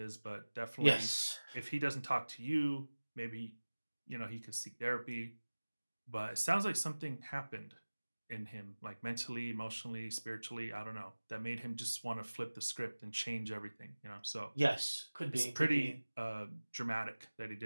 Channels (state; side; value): inverted; both; correlation -1.00